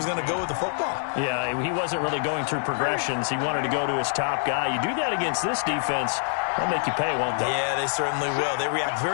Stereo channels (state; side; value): silent; right; digital silence